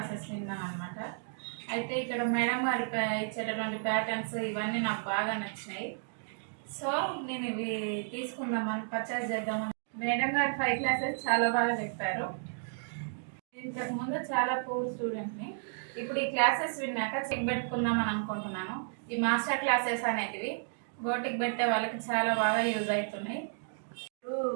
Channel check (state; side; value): silent; left; digital silence